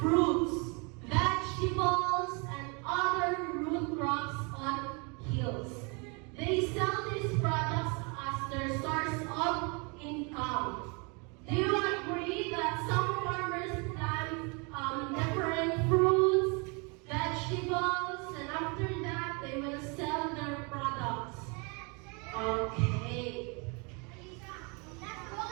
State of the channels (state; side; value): quieter; left; 32.1 dB